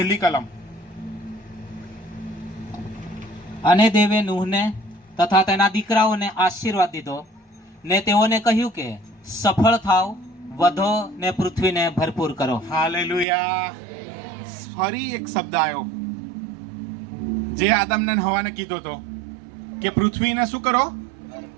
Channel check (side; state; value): left; drops out; at 13.2 s